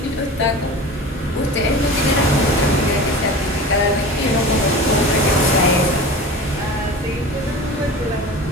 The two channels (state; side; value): normal; both; correlation 0.35